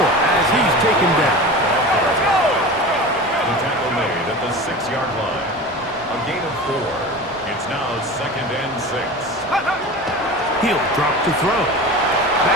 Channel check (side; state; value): both; normal; correlation 0.32